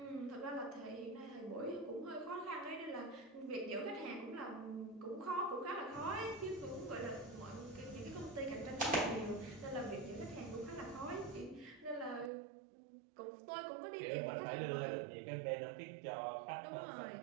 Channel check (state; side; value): drops out; left; at 12.3 s